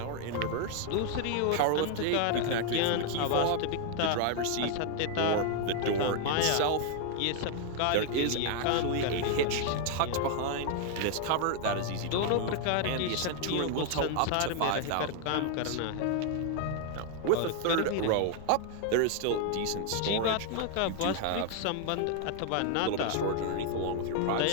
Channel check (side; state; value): both; different; correlation 0.00